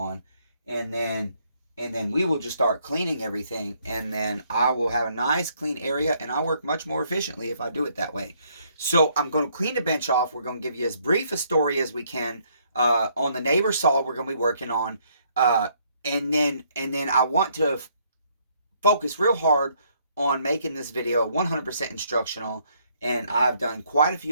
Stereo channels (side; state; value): both; inverted; correlation -0.68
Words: And then we will just start cleaning everything. And then I will have a nice clean area, and I work much more efficiently if I do it that way. So I'm going to clean the bench off. We're going to give you as brief a story as we can on the neighbor saw we're going to be working on. And then I want to focus real hard on making this video 100% instructional. And I've done quite a